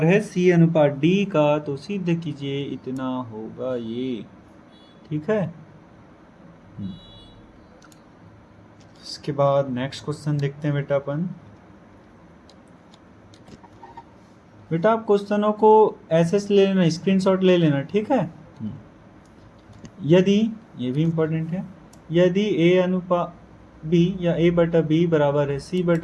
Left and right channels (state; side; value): identical; both; correlation 1.00